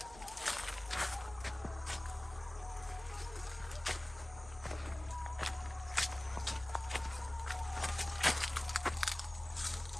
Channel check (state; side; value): noise; left; hum, 17 dB below the sound